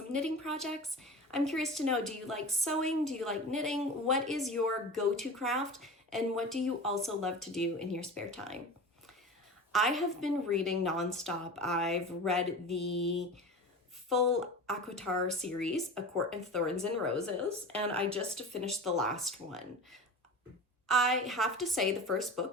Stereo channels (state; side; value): normal; both; correlation 0.32